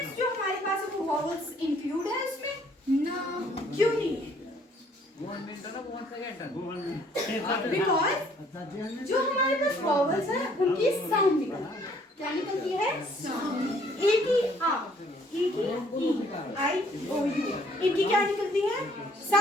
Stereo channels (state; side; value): normal; both; correlation 0.62